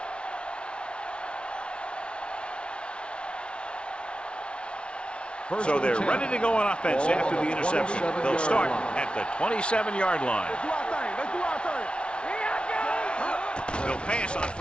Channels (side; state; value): right; late; 0.058 ms